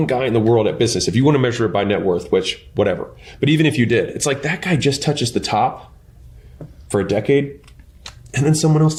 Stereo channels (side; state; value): both; identical; correlation 1.00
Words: guy in the world at business, if you want to measure it by net worth, which whatever, but even if you did, it's like that guy just touches the top for a decade, and then someone else